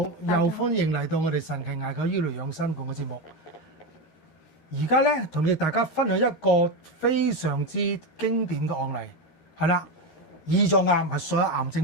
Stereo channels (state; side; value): late; right; 13 ms